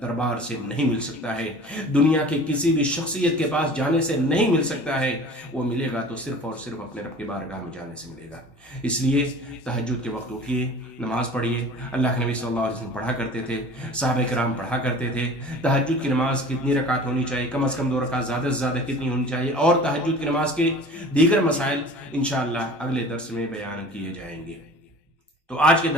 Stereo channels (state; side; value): normal; both; correlation 0.42